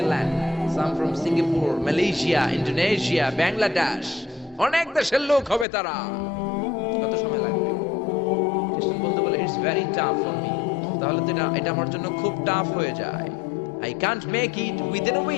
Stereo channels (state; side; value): drops out; right; at 5.7 s